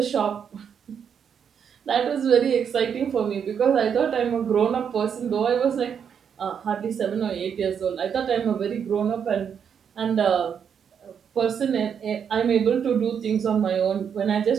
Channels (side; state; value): left; quieter; 7.6 dB